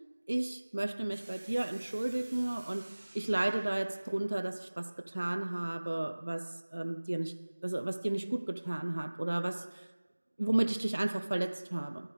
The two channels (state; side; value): inverted; both; correlation -1.00